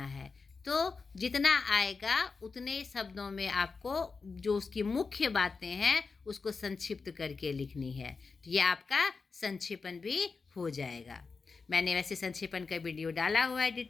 है। तो जितना आएगा उतने शब्दों में आपको जो उसकी मुख्य बातें हैं उसको संक्षिप्त करके लिखनी है। तो ये आपका संक्षेपण भी हो जाएगा। मैंने वैसे संक्षेपण का वीडियो डाला हुआ है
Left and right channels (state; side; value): quieter; right; 4.7 dB